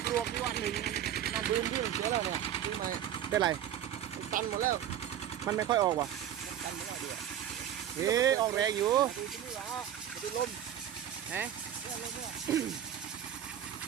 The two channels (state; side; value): quieter; left; 10.6 dB